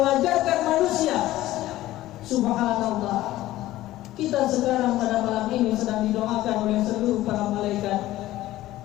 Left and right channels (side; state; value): right; quieter; 15.6 dB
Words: manusia. Subhanallah, kita sekarang pada malam ini sedang didoakan oleh seluruh para malaikat,